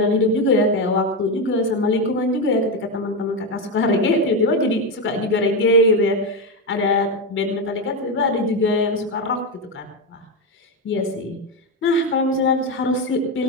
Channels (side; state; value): both; normal; correlation 0.10